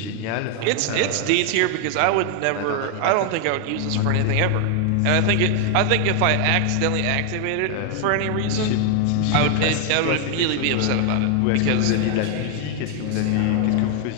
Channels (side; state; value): both; different; correlation 0.00